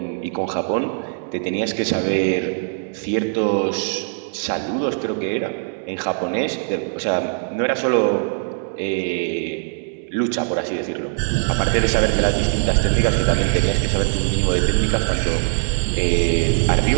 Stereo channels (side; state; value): left; silent; digital silence